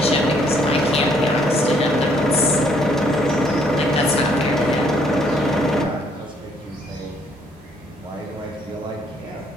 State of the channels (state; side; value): normal; both; correlation 0.66